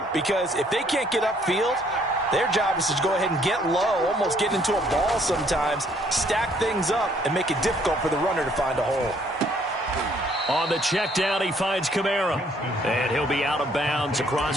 because if they can't get upfield, their job is to go ahead and get low, almost get into a ball sometimes, stack things up, and make it difficult for the runner to find a hole. On the check down, he finds Kamara, and he'll be out of bounds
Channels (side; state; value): both; normal; correlation 0.64